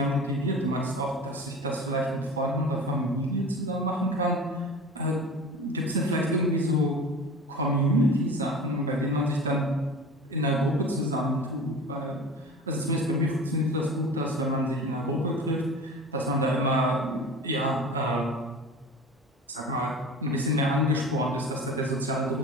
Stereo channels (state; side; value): normal; both; correlation 0.36